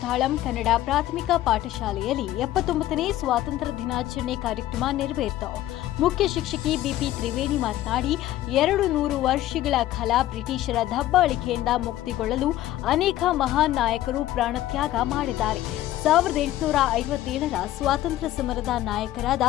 ಕನ್ನಡ ಪ್ರಾಥಮಿಕ ಪಾಠಶಾಲೆಯಲ್ಲಿ 79ನೇ ಸ್ವಾತಂತ್ರ್ಯ ದಿನಾಚರಣೆ ಕಾರ್ಯಕ್ರಮ ನೆರವೇರಿತು. ಮುಖ್ಯ ಶಿಕ್ಷಕಿ ಬಿಪಿ ತ್ರಿವೇಣಿ ಮಾತನಾಡಿ, 200 ವರ್ಷಗಳ ಕಾಲ ಬ್ರಿಟಿಷರ ದಬ್ಬಾಳಿಕೆಯಿಂದ ಮುಕ್ತಿಗೊಳ್ಳಲು ಅನೇಕ ಮಹಾನ್ ನಾಯಕರು ಪ್ರಾಣತ್ಯಾಗ ಮಾಡಿದ್ದಾರೆ. 1857ರ ಸ್ವಾತಂತ್ರ್ಯ ಸಮರದ ನಾಯಕರಾದ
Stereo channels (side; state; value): right; quieter; 14.2 dB